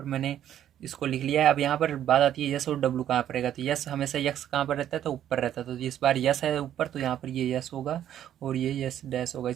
मैंने इसको लिख लिया है। अब यहाँ पर बात आती है यस और डब्लू कहाँ पर रहेगा, तो यस हमेशा यक्स कहाँ पर रहता है, तो ऊपर रहता है। तो इस बार यस है ऊपर, तो यहाँ पर ये यस होगा और ये यस डैश होगा।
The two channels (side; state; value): left; quieter; 10.9 dB